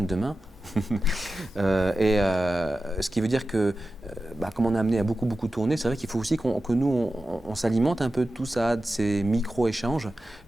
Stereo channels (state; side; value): normal; both; correlation 0.93